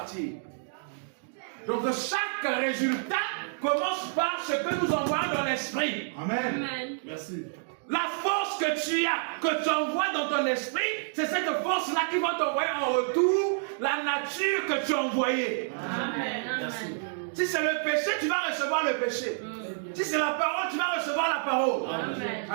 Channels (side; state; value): left; silent; digital silence